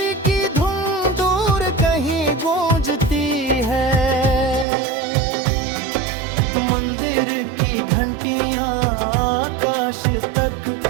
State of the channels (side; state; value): left; drops out; at 4.7 s